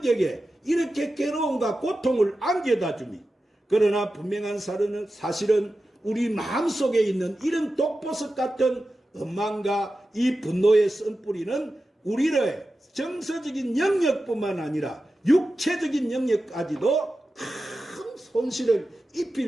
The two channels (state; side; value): normal; both; correlation 0.93